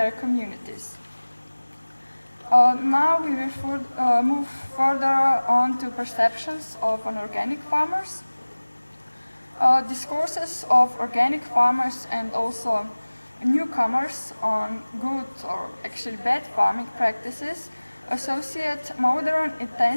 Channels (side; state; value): both; inverted; correlation -1.00